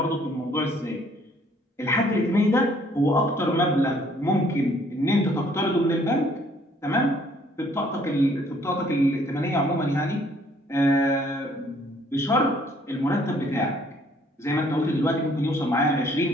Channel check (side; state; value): both; normal; correlation 0.62